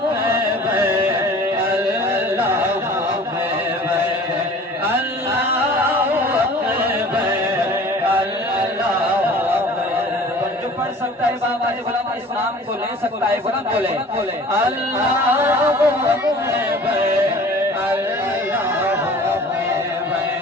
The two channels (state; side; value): normal; both; correlation 0.45